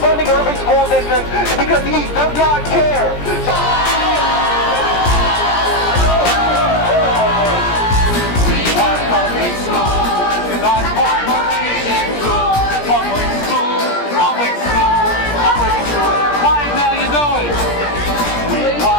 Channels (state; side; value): late; right; 17 ms